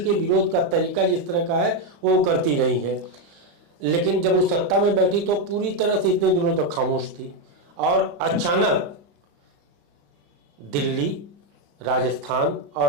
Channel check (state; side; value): late; left; 35 ms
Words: विरोध का तरीका जिस तरह का है वो करती रही है। लेकिन जब वो सत्ता में बैठी तो पूरी तरह से इतने दिनों तक खामोश थी और अचानक दिल्ली, राजस्थान